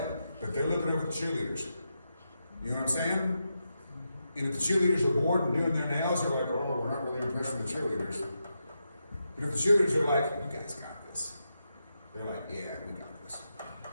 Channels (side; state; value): both; inverted; correlation -0.86